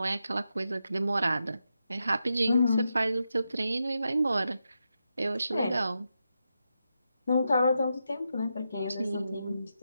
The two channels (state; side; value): inverted; both; correlation -0.86